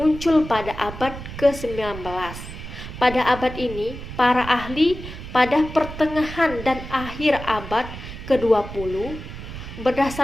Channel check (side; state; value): right; noise; rumble, 11 dB below the sound